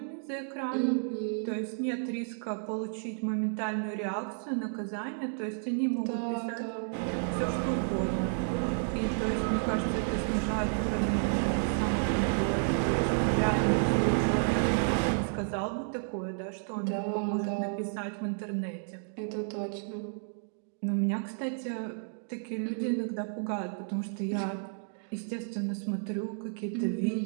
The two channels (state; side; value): silent; left; digital silence